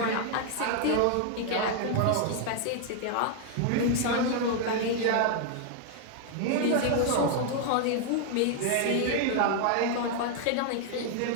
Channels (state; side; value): different; both; correlation 0.00